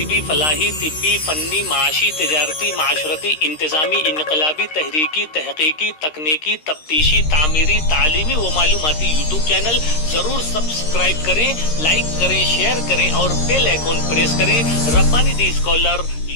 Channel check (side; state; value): right; late; 13 ms